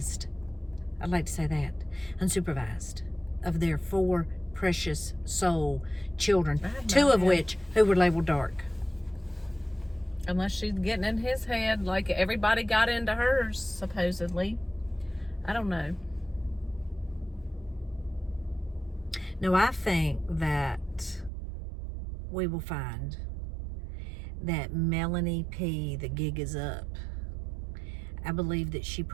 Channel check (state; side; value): drops out; left; at 21.3 s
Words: I'd like to say that. Unsupervised. Of their 4 precious soul children. 2 of which who were labeled dark. Unless she's getting in his head like everybody got into hers, supposedly. I don't know. No, I think that we will find that Melanie P., the gig is up. I believe that she